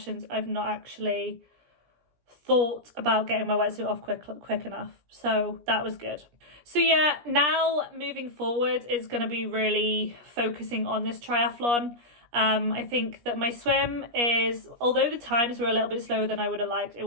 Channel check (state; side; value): late; left; 17 ms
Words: I've not actually thought about getting my wetsuit off quick enough. So that was good. So yeah, now moving forward is going to be really focusing on this triathlon. I think that my swim is, although the times were a little bit slower than I would have liked, it